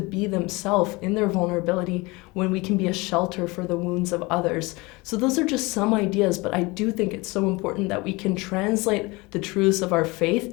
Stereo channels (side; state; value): right; quieter; 24.3 dB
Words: themselves in their vulnerability when we can be a shelter for the wounds of others. So those are just some ideas, but I do think it's so important that we can translate the truths of our